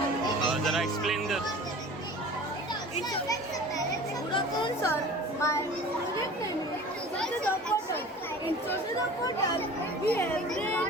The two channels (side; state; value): both; normal; correlation 0.41